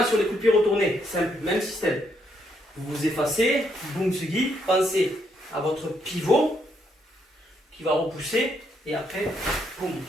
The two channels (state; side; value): normal; both; correlation 0.74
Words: sur les coups de pied retournés, simple, même système. Vous vous effacez, Bumsugi, pensez à votre pivot qui va repousser et après, boum,